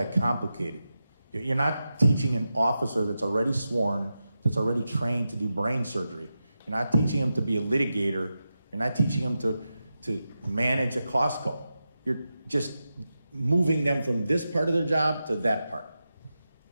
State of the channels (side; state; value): both; inverted; correlation -0.90